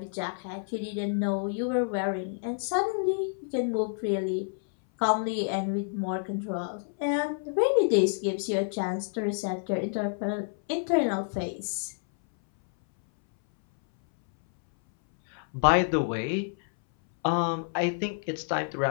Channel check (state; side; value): silent; right; 59 dB below the other